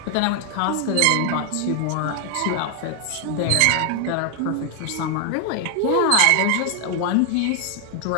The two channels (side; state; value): both; different; correlation 0.00